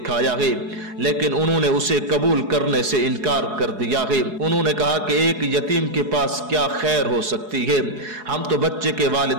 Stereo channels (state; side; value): late; left; 4.8 ms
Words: ہے لیکن انہوں نے اسے قبول کرنے سے انکار کر دیا ہے۔ انہوں نے کہا کہ ایک یتیم کے پاس کیا خیر ہو سکتی ہے، ہم تو بچے کے